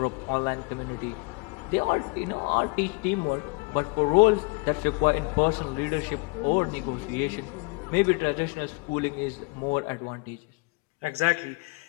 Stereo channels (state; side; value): quieter; right; 27.7 dB